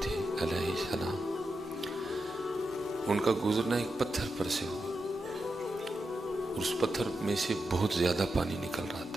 تھے علیہ السلام، ان کا گزرنا ایک پتھر پر سے ہوا، اور اس پتھر میں سے بہت زیادہ پانی نکل رہا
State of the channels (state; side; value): normal; both; correlation 0.88